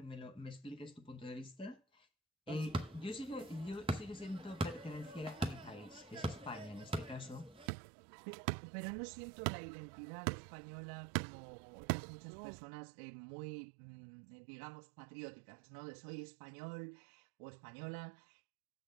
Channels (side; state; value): left; drops out; at 7.7 s